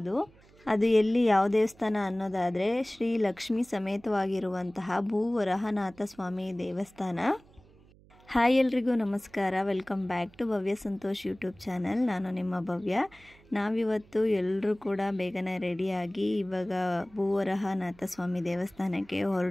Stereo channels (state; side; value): noise; right; hum, 27 dB below the sound